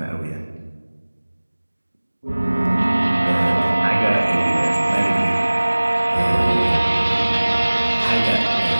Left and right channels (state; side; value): inverted; both; correlation -1.00